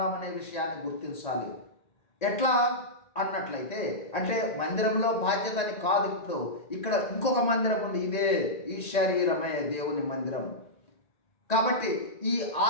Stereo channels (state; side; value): late; right; 1.8 ms